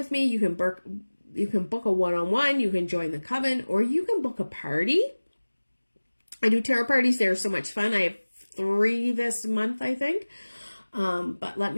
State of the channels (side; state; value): both; inverted; correlation -1.00